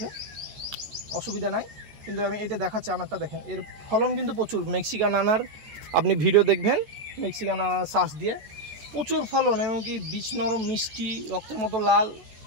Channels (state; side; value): late; left; 14 ms